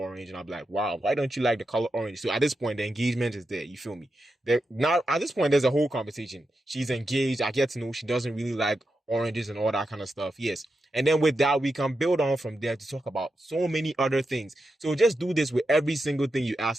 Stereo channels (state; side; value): normal; both; correlation 0.88